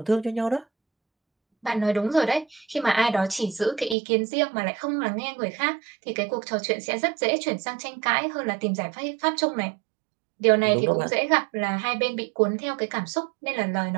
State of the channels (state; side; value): drops out; left; at 4.0 s